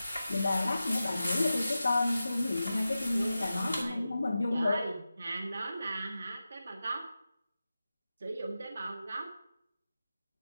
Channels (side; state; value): both; inverted; correlation -0.93